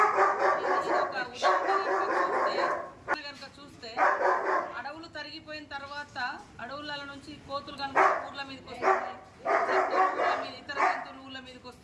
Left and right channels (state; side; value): identical; both; correlation 1.00